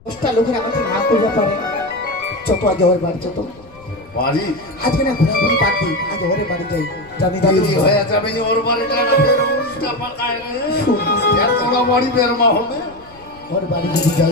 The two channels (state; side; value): noise; left; rumble, 26 dB below the sound